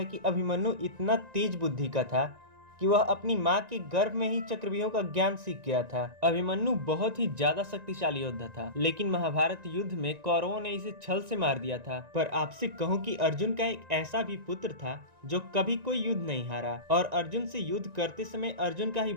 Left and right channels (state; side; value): late; left; 1.9 ms